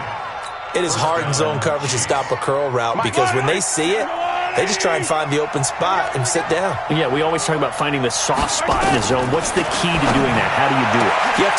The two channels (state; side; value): identical; both; correlation 1.00